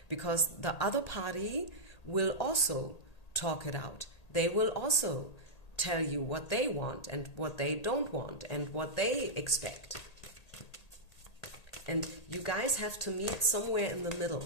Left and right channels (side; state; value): right; late; 1.8 ms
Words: because the other party will also talk it out. They will also tell you what they want and what they don't want and what they expect. And you guys have to meet somewhere in the